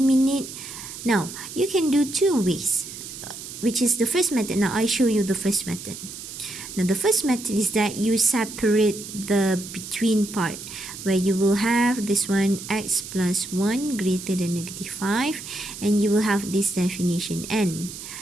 now you can do two ways, which is the first method. Now I show you the first method. Now the first method is that you separate the between part, where you will have this one x plus 1 greater than negative 5, and you will have this definition n.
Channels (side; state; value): right; noise; hiss, 11 dB below the sound